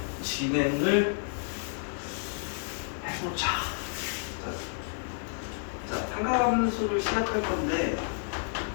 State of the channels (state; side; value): silent; right; 58 dB below the other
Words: 진행을 해보자. 자, 삼각함수를 시작할 건데